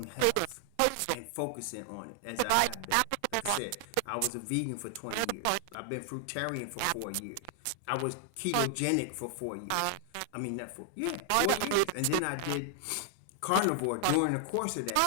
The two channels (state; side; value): different; both; correlation 0.00